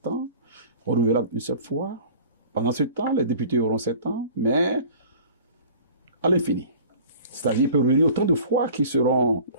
ans, renouvelable une seule fois. Pendant ce temps, les députés auront 7 ans, mais à l'infini. C'est-à-dire qu'il peut revenir autant de fois qui seront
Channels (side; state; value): both; inverted; correlation -0.45